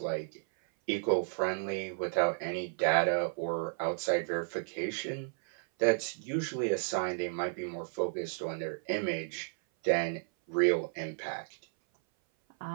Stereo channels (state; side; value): silent; left; 56 dB below the other